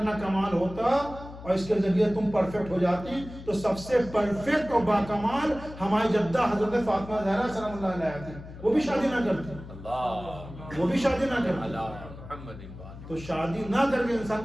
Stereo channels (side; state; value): left; noise; hum, 14 dB below the sound